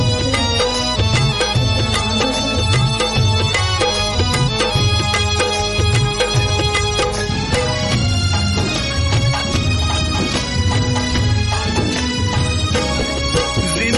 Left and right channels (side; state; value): both; identical; correlation 1.00